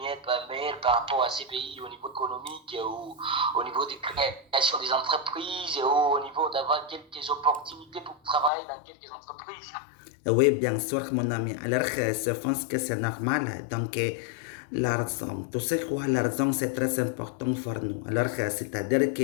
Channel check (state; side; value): drops out; right; at 8.5 s